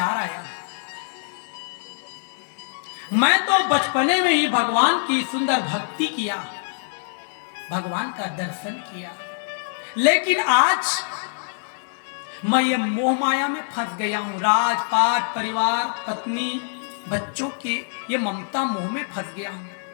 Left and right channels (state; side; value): silent; right; digital silence